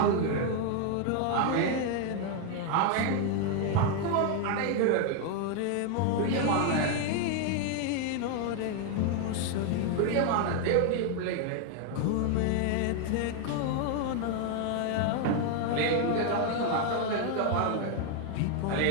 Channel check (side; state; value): both; different; correlation 0.01